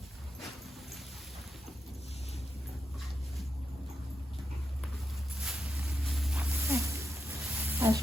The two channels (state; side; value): normal; both; correlation 0.86